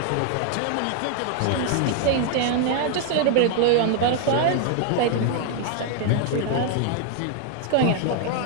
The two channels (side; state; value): both; different; correlation 0.00